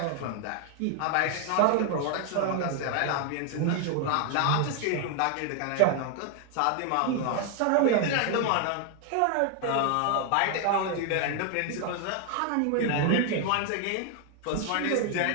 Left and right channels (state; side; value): different; both; correlation 0.00